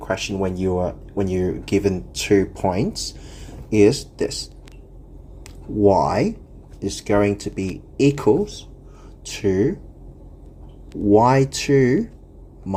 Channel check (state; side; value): identical; both; correlation 1.00